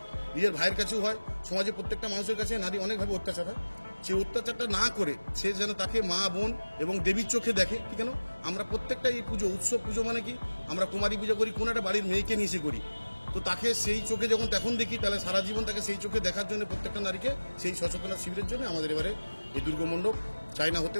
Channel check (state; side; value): inverted; both; correlation -1.00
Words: নিজের ভাইয়ের কাছেও হয়, সমাজের প্রত্যেকটা মানুষের কাছে নারী অনেকভাবে অত্যাচার হয়। সেই অত্যাচারটা না করে সে যেন তাকে মা বোন এবং দেবীর চোখে দেখে। ঠিক কেন আমরা প্রত্যেকটা এই পুজো উৎসব, পুজো মানে কি আমরা কুমারী পুজো করি, কোন একটা বাড়ির মেয়েকে নিয়ে এসে করি, তো তাকে সেই চোখে যখন তখন দেখি, তাহলে সারা জীবন তাকে সেই চোখে দেখার জন্য প্রত্যেকটা নারীকে সেই সচেতনতা শিবিরের জন্য আমাদের এবারে এই দুর্গা মণ্ডপ চায়না হতে